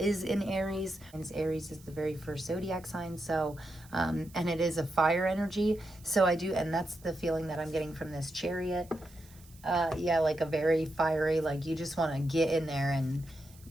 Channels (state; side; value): noise; right; hiss, 25 dB below the sound